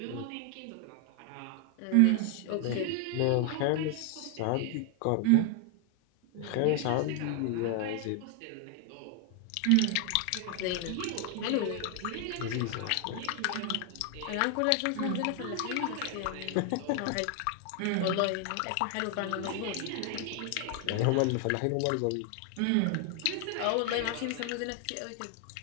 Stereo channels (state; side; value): different; both; correlation 0.00